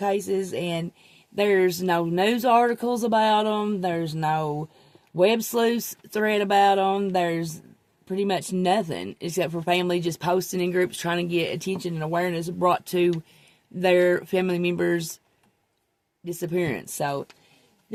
and there's no news articles about them. There's no web sleuth thread about them. There's pretty much nothing except for family just posting in groups trying to get attention and awareness brought to their family members' disappearance. So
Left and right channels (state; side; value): identical; both; correlation 1.00